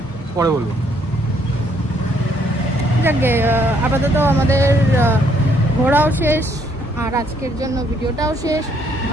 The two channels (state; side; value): normal; both; correlation 0.68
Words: পরে বলবো। যাকে আপাতত আমাদের ঘোরাও শেষ আর আজকের জন্য ভিডিওটাও শেষ।